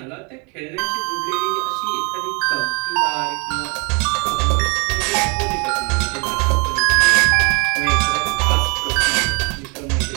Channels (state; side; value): quieter; left; 32.2 dB